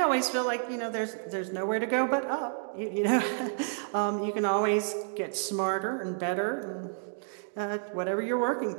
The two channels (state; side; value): silent; left; digital silence